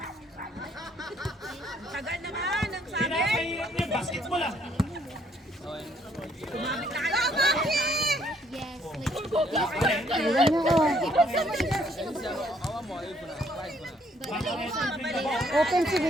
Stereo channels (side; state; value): both; normal; correlation 0.66